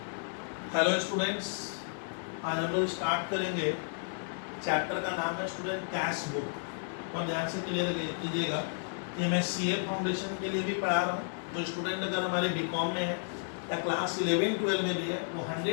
हेलो स्टूडेंट्स, आज हम लोग स्टार्ट करेंगे। चैप्टर का नाम है स्टूडेंट कैश बुक। और ध्यान से क्लियर कीजिएगा कि मैं सीए फाउंडेशन के लिए भी पढ़ा रहा हूँ। जो स्टूडेंट अगर हमारे बीकॉम में है या क्लास 11-12 में भी है, वो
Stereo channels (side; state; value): right; silent; 56 dB below the other